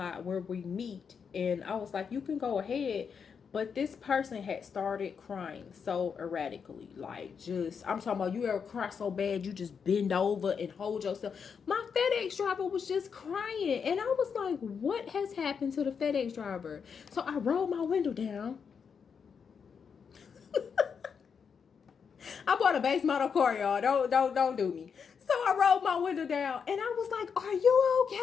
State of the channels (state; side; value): quieter; right; 6.4 dB